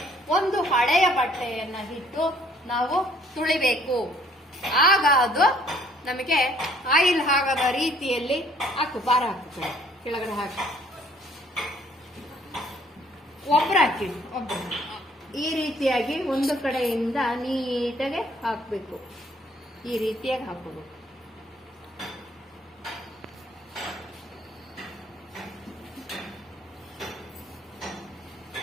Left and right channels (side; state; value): both; normal; correlation 0.61